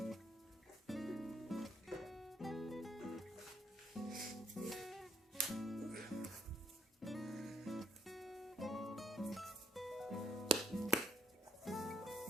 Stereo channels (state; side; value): normal; both; correlation 0.69